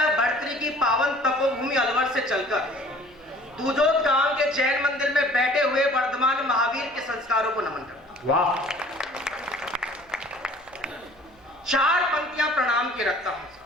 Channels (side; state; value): right; noise; hum, 30 dB below the sound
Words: भर्तृहरि की पावन तपोभूमि अलवर से चलकर दूजोत गांव के जैन मंदिर में बैठे हुए वर्धमान महावीर के संस्कारों को नमन करता हूं। वाह। 4 पंक्तियां प्रणाम की रखता हूं।